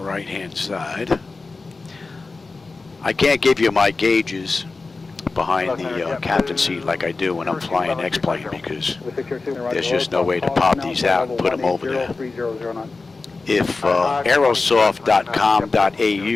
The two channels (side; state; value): right; quieter; 3.8 dB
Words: side. I can't give you my gauges behind the captain seat like I do when I'm flying X-Plane because there's just no way to pop these out and put them over there. If